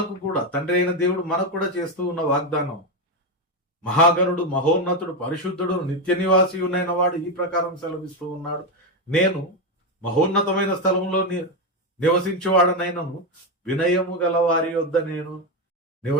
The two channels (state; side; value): normal; both; correlation 0.09